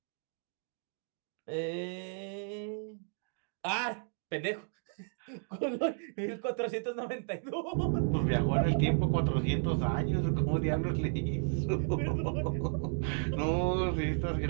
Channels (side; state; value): left; silent; digital silence